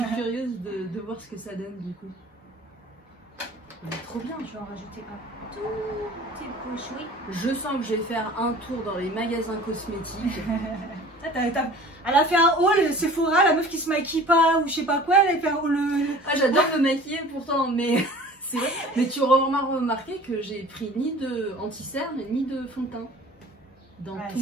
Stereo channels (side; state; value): both; normal; correlation 0.45